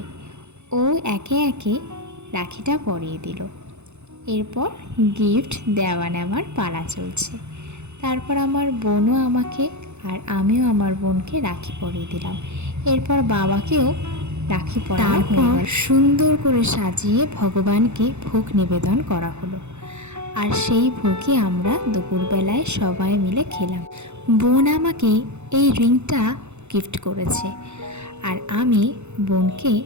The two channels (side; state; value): left; late; 0.82 ms